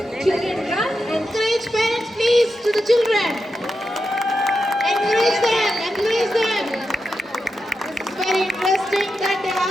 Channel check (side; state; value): both; normal; correlation 0.88